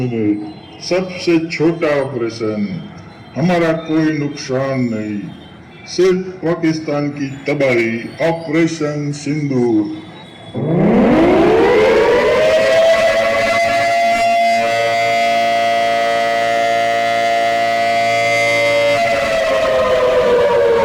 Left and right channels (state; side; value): identical; both; correlation 1.00